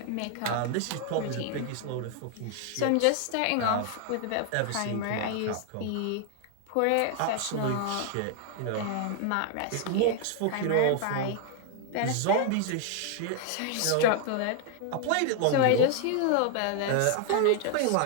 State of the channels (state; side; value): different; both; correlation 0.00